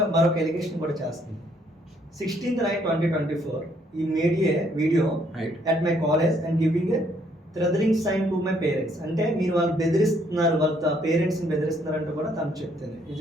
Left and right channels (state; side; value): normal; both; correlation 0.68